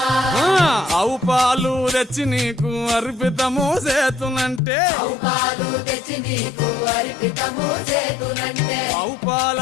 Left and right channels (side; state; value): right; drops out; at 4.6 s